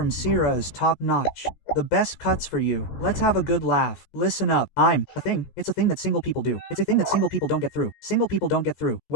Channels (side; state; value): right; late; 16 ms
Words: Sierra is top notch. The best cuts for you. Let's have a good laugh. Listen up. I'm a thing. It's a thing that single people do. It's a thing that single people don't get through. Single people don't get through.